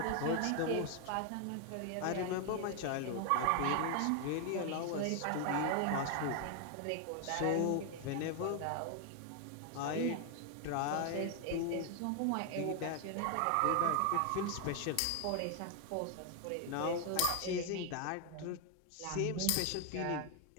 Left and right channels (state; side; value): different; both; correlation 0.00